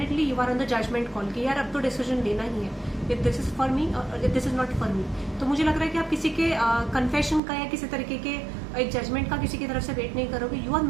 you are on the judgement call कि यार अब तो डिसीजन लेना ही है, if this is for me और if this is not for me. तो मुझे लग रहा है कि आप किसी के कन्फेशन का या किसी तरीके के एक जजमेंट का किसी की तरफ से वेट नहीं करोगे. You are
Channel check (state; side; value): drops out; left; at 7.4 s